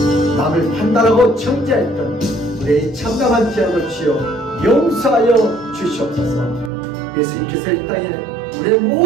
남을 판단하고 정죄했던 우리의 참담한 죄악을 주여 용서하여 주시옵소서. 예수님께서 이 땅에 우리의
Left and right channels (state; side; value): drops out; left; at 6.7 s